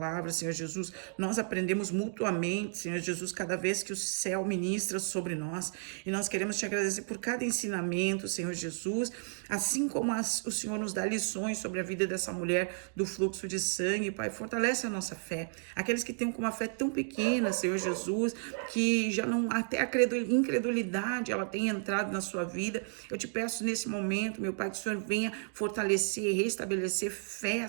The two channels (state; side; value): silent; left; 56 dB below the other